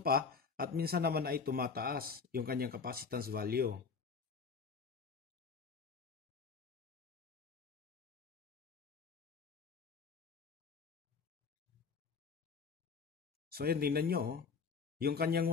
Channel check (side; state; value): right; quieter; 5.3 dB